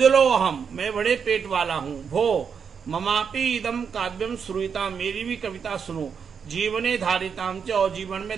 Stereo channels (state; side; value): quieter; left; 6.6 dB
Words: हम, मैं बड़े पेट वाला हूँ। भो ममापि इदम काव्यम श्रूयताम, मेरी भी कविता सुनो। जीवने धारिताम च, और जीवन